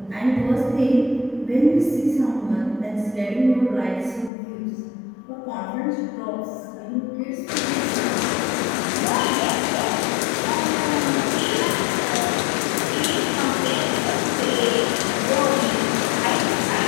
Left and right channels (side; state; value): right; drops out; at 4.3 s